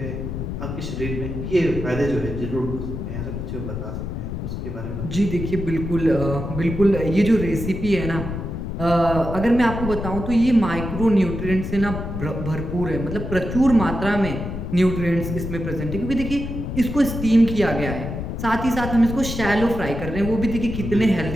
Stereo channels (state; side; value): noise; left; rumble, 5 dB below the sound